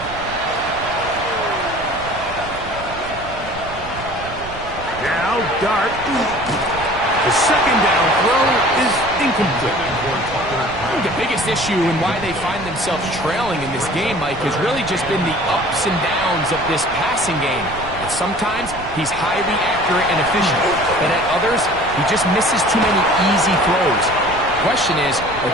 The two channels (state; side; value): noise; right; rumble, 14 dB below the sound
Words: Now Dart. The second down throw is incomplete. I think the biggest issue and why they find themselves trailing in this game, Mike, has really just been the ups and downs of this passing game. At sometimes, he's highly accurate and efficient, but at others, he just misses too many easy throws. The question is, are